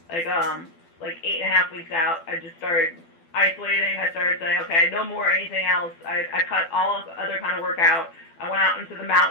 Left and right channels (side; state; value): right; late; 12 ms